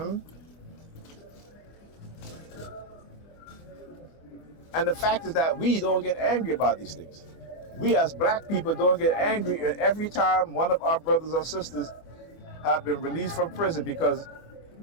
And the fact is that we don't get angry about these things. We as black people don't get angry every time one of our brothers or sisters have been released from prison because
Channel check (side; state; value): right; late; 24 ms